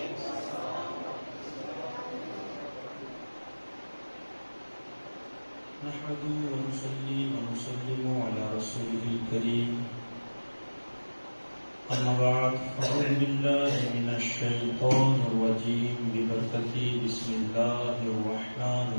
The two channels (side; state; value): both; inverted; correlation -1.00